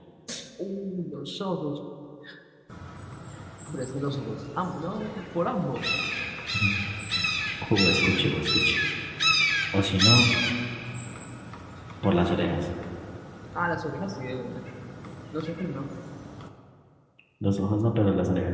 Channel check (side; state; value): both; identical; correlation 1.00